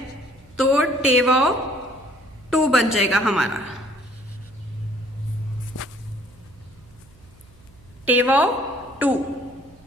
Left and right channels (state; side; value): noise; right; hum, 27 dB below the sound